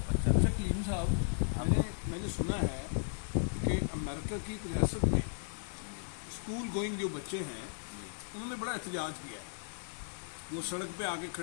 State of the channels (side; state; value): right; silent; digital silence